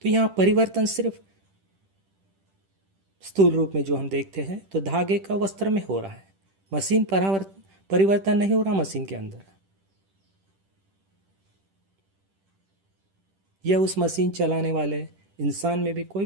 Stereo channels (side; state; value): left; late; 10 ms